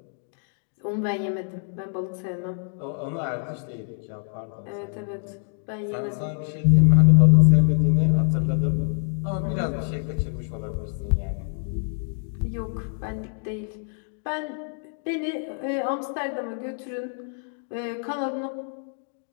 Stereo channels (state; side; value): silent; right; digital silence